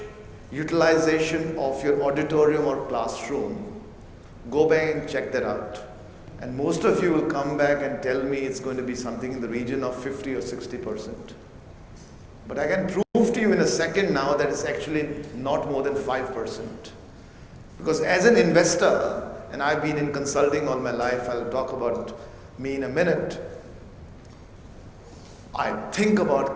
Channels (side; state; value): both; identical; correlation 1.00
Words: utilization of your auditorium or classroom? Go back and check that out. And most of you will come back and tell me it's going to be something in the region of 50 or 60%. But I can prove to you in a second now that it's actually not more than 5%. Because as an investor, and I've been in consulting all my life, I'll talk about me in a minute, I think about